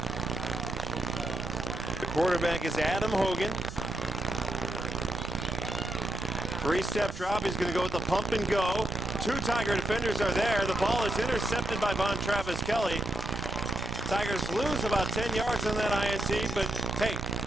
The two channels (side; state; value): right; noise; rumble, 11 dB below the sound